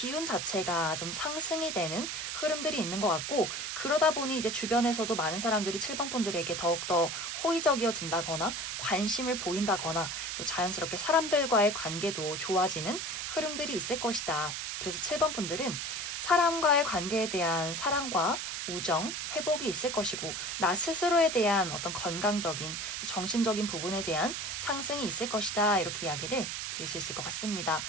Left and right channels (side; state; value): right; noise; hiss, 4 dB below the sound